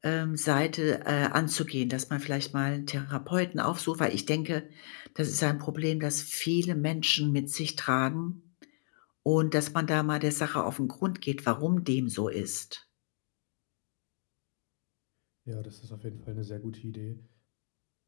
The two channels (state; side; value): silent; right; digital silence